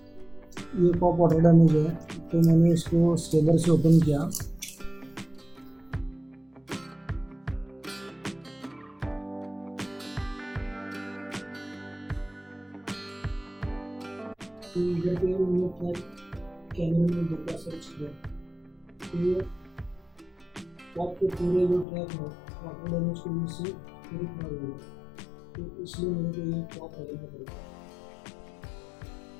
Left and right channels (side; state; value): right; drops out; at 21.9 s